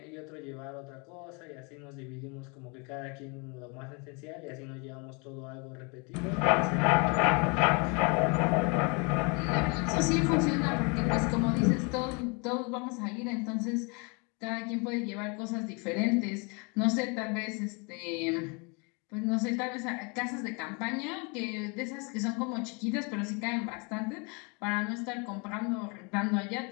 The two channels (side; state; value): right; quieter; 32.2 dB